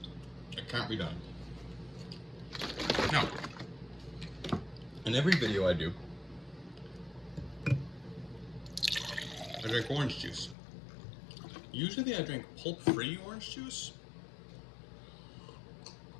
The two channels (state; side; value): drops out; right; at 10.6 s